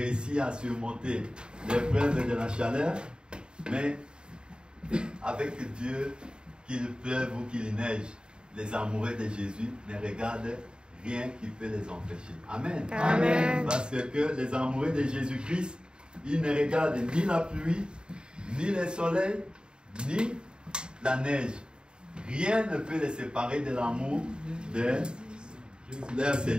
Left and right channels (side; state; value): left; late; 0.050 ms